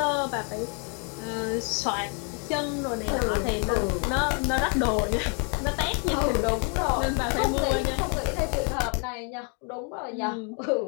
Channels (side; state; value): right; quieter; 37.9 dB